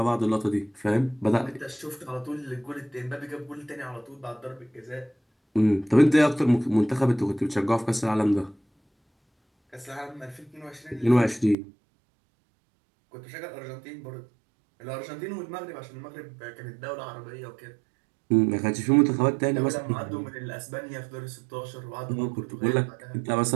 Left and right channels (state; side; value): drops out; left; at 11.6 s